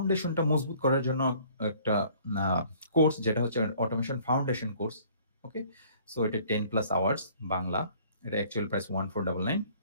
মজবুত করার জন্য একটা আ কোর্স যেটা হচ্ছে অটোমেশন ফাউন্ডেশন কোর্স। ওকে? সো এটা 10 প্লাস আওয়ার্স বাংলা। এটা অ্যাকচুয়াল প্রাইস 1499।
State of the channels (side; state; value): both; inverted; correlation -0.55